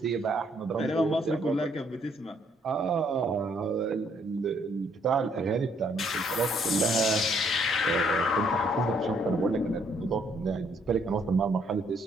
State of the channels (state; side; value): normal; both; correlation 0.68